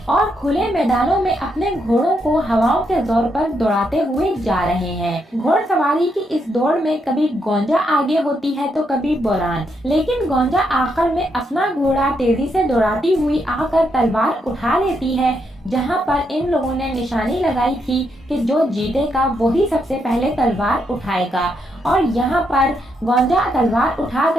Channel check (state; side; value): normal; both; correlation 0.79